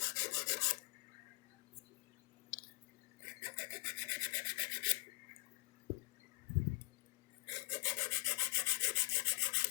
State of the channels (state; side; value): quieter; right; 25.8 dB